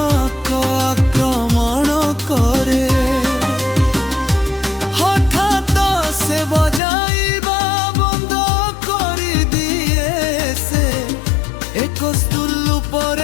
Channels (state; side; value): drops out; right; at 6.8 s